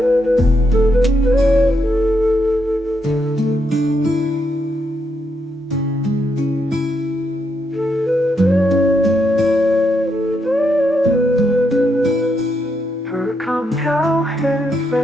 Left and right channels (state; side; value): normal; both; correlation 0.80